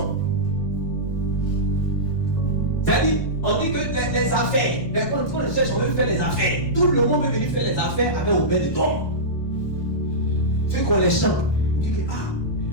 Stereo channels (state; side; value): late; right; 1.2 ms